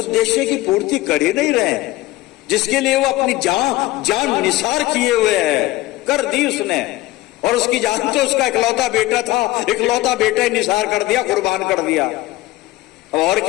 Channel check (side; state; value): right; quieter; 17.8 dB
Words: की पूर्ति कर ही नहीं रहे, जिसके लिए वो अपनी जान निसार किए हुए है, कर दी उसने। और उसकी जान तो उसका इकलौता बेटा था, इकलौता बेटा ही निसार कर दिया, कुर्बान कर दिया। अब और